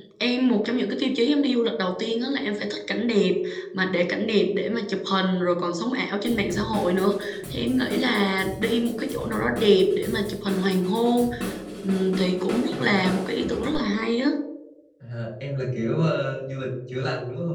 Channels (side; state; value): both; identical; correlation 1.00